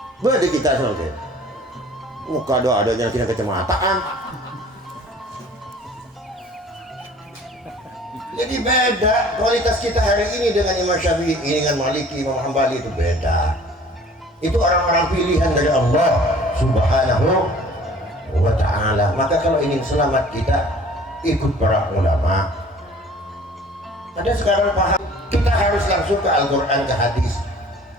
Berarti kita sebenarnya muka doa ada yang tidak kecemataan. Jadi beda kualitas kita hari ini dengan Imam Syafi'i, dengan Maliki, Imam Hambali itu beda. Itu orang-orang pilihan dari Allah Subhanahu wa ta'ala. Maka kalau ingin selamat kita ikut para ulama. Ada sekarang paham, kita harus langsung ke Al-Quran, ke hadis.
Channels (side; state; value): both; normal; correlation 0.49